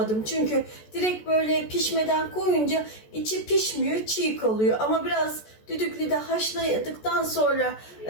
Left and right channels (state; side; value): late; right; 14 ms